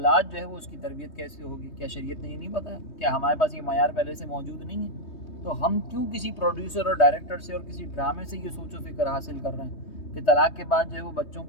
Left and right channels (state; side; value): late; right; 3.2 ms